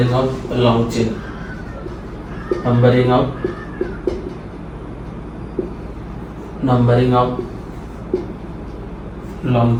of long chain, numbering of long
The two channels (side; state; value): both; identical; correlation 1.00